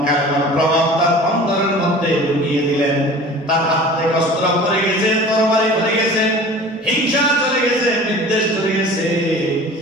কারণ প্রভাব তার অন্তরের মধ্যে ঢুকিয়ে দিলেন, তার হাত থেকে অস্ত্র পড়ে গেছে, তরবারি পড়ে গেছে, হিংসা চলে গেছে, বিদ্বেষ চলে গেছে।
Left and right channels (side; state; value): both; normal; correlation 0.42